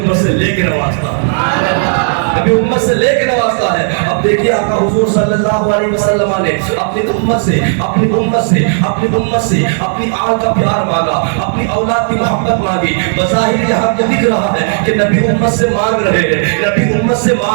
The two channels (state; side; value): silent; left; digital silence